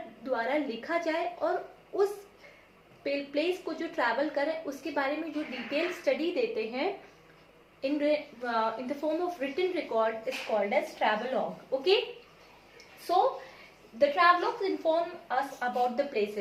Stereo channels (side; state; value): both; identical; correlation 1.00